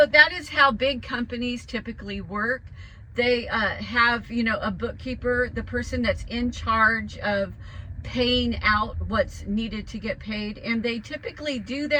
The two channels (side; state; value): both; identical; correlation 1.00